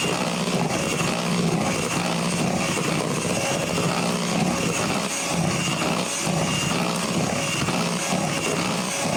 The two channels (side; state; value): both; identical; correlation 1.00